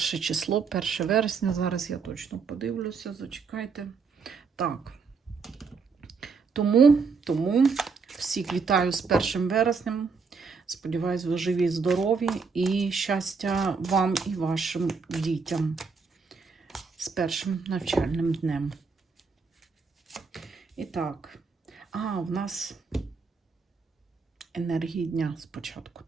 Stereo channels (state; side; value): quieter; left; 5.0 dB